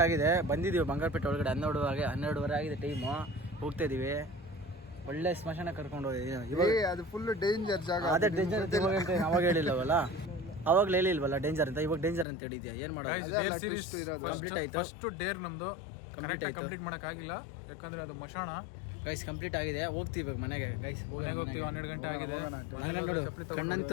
ಆಗಿದೆ. ಬಂದಿದ್ದೀವಿ ಬಂಗಾರಪೇಟೆ ಒಳಗಡೆ. 12:12 ಆಗಿದೆ ಟೈಮು. ಹೋಗ್ತಾ ಇದೀವಿ. ಒಳ್ಳೆ ಸ್ಮಶಾನ ಕರ್ಕೊಂಡು ಹೋಗಿದ್ದೀವಿ. ಅದು ಫುಲ್ ಡೇಂಜರ್ ಜಾಗ. ಅದೇ ಡೇಂಜರ್ ಅಂತ ಅವಾಗ ಹೇಳಿಲ್ಲವಲ್ಲ, ಅವಾಗಲೇ ಹೇಳಿಲ್ವಲ್ಲ ಡೇಂಜರ್ ಅಂತ. ಇವಾಗ ಡೇಂಜರ್ ಅಂತ ಹೇಳಿದ್ಯಾ? ಏನು ಮಾಡೋದು? ಸೀರೀಸ್ ಕಂಪ್ಲೀಟ್ ಆಯ್ತು. ಫಸ್ಟ್ ಡೇರ್ ನಮ್ದು ಕಂಪ್ಲೀಟ್ ಮಾಡೋಕ್ಕಾಗಿಲ್ಲ. ಯಾಕಂದ್ರೆ ಅದು ಮಶಾಣ ಗೈಸ್ ಕಂಪ್ಲೀಟ್ ಆಗಿದೆ, ಹೋಗ್ತೀವಿ ಇವಾಗ ಮನೆಗೆ ಗೈಸ್. ಹೋಗ್ತೀವಿ, 12 ಗಂಟೆ ಆಗಿದೆ. ನೋಡು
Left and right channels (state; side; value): drops out; right; at 12.2 s